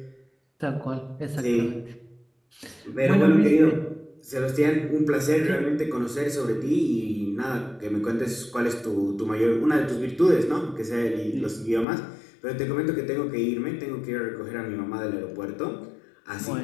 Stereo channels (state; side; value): drops out; right; at 11.9 s